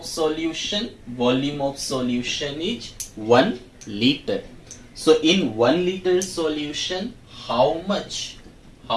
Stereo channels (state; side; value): identical; both; correlation 1.00